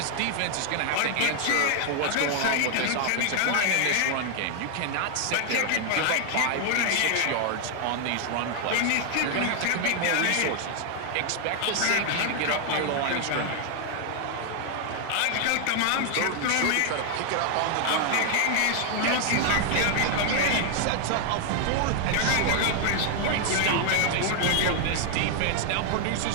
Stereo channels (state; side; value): different; both; correlation 0.00